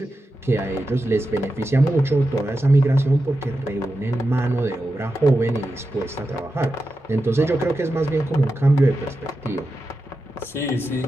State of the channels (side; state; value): both; normal; correlation 0.90